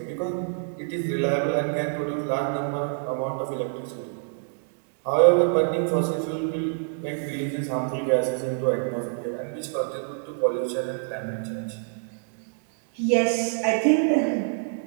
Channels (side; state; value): left; silent; digital silence